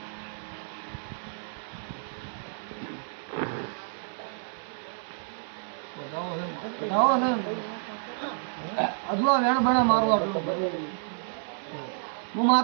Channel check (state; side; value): silent; left; 58 dB below the other